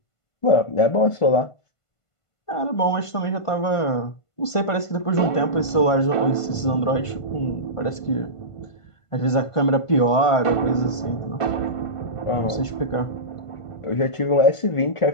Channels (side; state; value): right; late; 1.5 ms